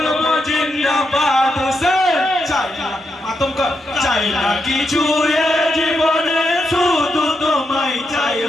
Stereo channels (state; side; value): normal; both; correlation 0.83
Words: জিন্দাবাদ হোসেন, চাই না আতঙ্ক, চাই না কিছু জীবনে শুধু তোমায় চাই